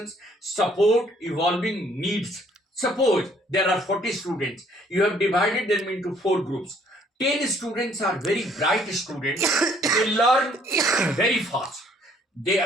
support, evolving needs. Suppose there are 40 students, you have divided them into 4 groups. 10 students are very bright students, they learn very fast.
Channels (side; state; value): both; normal; correlation 0.62